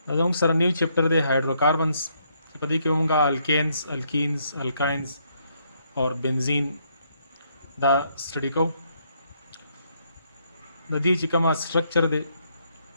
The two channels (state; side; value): inverted; both; correlation -0.73